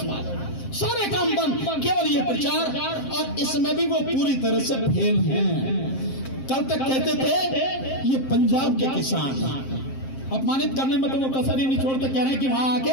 में, सारे काम बंद, केवल ये प्रचार, और इसमें भी वो पूरी तरह से फेल हैं। कल तक कहते थे ये पंजाब के किसान, अपमानित करने में तो वो कसर ही नहीं छोड़ते, कह रहे हैं कि वहां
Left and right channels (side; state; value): right; late; 7.6 ms